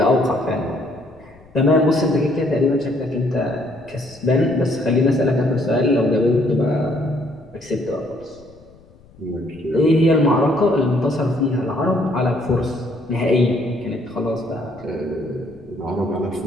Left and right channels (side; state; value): left; noise; rumble, 26 dB below the sound